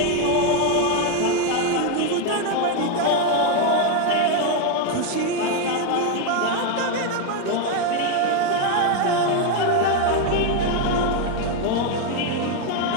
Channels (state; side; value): different; both; correlation 0.02